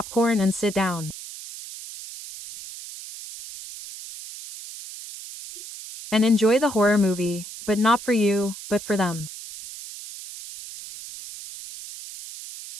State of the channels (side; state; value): right; noise; hiss, 13 dB below the sound